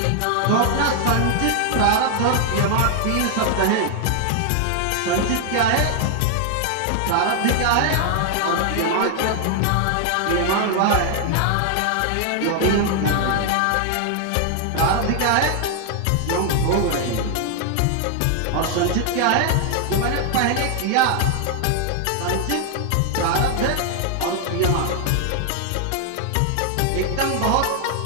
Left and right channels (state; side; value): different; both; correlation 0.00